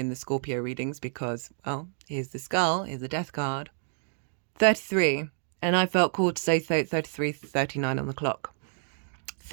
the Scorpio readings because, well, here's the skull, here's the death card. 33, and I felt called to say 33, 39 on the clock.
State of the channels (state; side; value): silent; left; digital silence